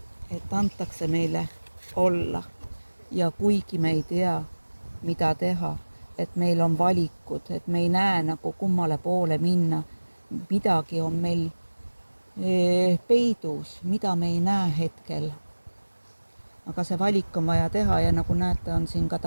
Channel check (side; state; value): both; inverted; correlation -1.00